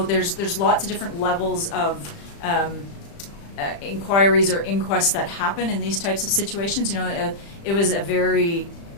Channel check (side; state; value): right; late; 35 ms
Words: There's lots of different levels of inquiries or inquests that happen in these types of situations. It was a very